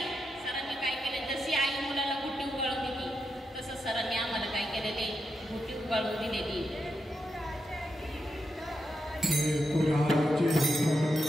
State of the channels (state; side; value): normal; both; correlation 0.86